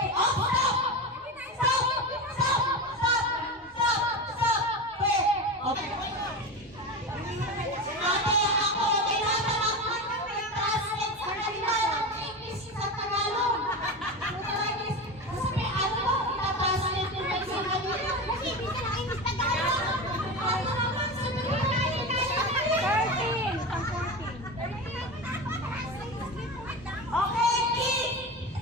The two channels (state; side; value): normal; both; correlation 0.23